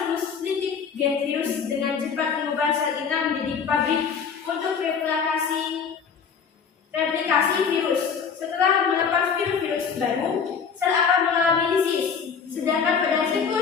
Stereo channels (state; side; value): quieter; right; 6.3 dB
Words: litik, gen virus dengan cepat mengubah sel inang menjadi pabrik untuk replikasi virus. Setelah melepas virus baru, sel akan mengalami lisis. Sedangkan pada